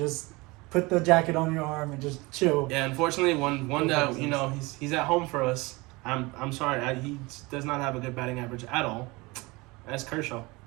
put the jacket on your arm and just chill. Yeah, unfortunately, one that he's at home for us. I'm sorry, he does not have a good batting average at all. That's Kershaw.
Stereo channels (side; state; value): left; quieter; 23.9 dB